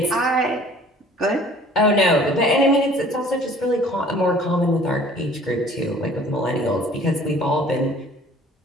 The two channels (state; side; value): normal; both; correlation 0.51